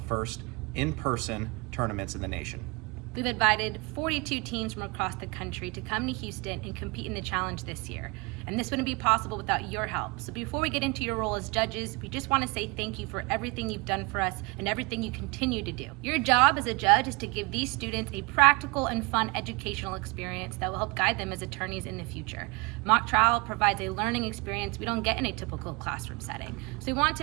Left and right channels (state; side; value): quieter; left; 27.0 dB